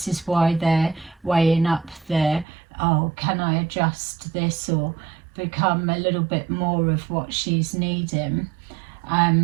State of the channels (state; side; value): drops out; left; at 2.5 s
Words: is why they're weighing up the, oh, can I adjust this or become a little bit more of what she's needing.